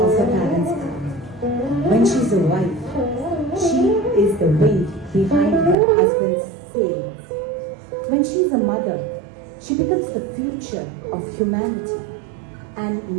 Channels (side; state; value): left; drops out; at 5.8 s